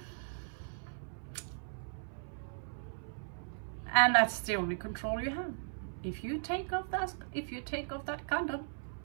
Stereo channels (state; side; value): silent; left; 53 dB below the other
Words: and that's the only control you have. If you take off that condom,